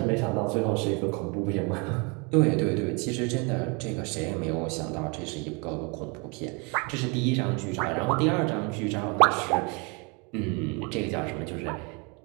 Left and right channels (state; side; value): quieter; left; 31.6 dB